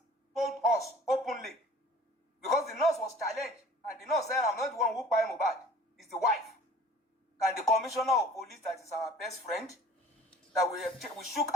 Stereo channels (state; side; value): normal; both; correlation 0.47